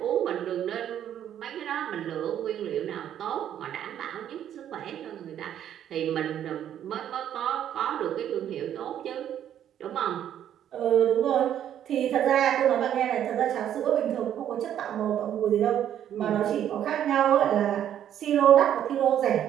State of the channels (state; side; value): quieter; left; 10.4 dB